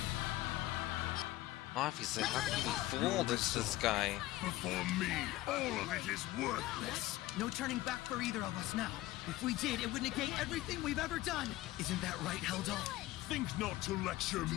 Obviously, how can you be fooled? It's this guy. Before me, all of it is worthless. No turning back for either of us now. If we did, it would negate everything we've ever done. Isn't that right, Heldal? Think not to lecture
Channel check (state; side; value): quieter; right; 16.9 dB